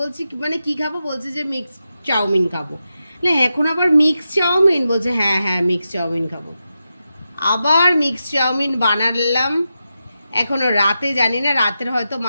মানে কি খাবো, বলছে যে মিক্স চাউমিন খাবো। না এখন আবার মিক্স চাউমিন, বলছে হ্যাঁ হ্যাঁ মিক্স চাউমিন খাবো। আবার মিক্স চাউমিন বানালাম। এখনো রাতে জানি না, রাতের হয়তো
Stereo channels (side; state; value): both; inverted; correlation -0.89